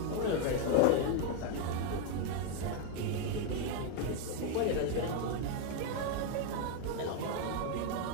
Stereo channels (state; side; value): different; both; correlation 0.01